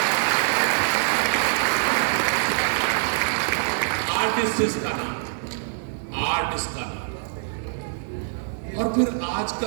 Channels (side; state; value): left; silent; digital silence